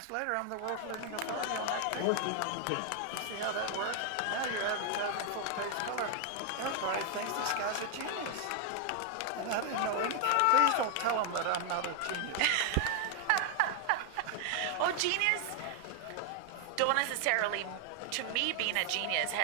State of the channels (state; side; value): different; both; correlation 0.00